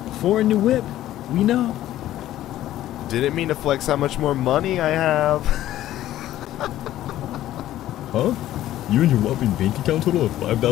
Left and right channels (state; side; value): quieter; right; 13.6 dB